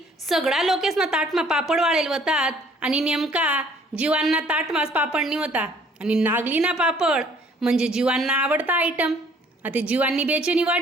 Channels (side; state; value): both; normal; correlation 0.58